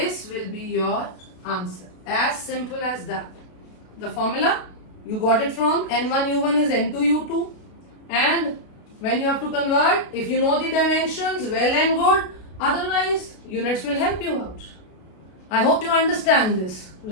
will be your answer. As simple as that. The formula, you got it from N1U1 is N2U2. And when you have to convert, if you know the dimensions, well and good. Otherwise, units will help you out. I hope you understand this,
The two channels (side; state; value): right; late; 32 ms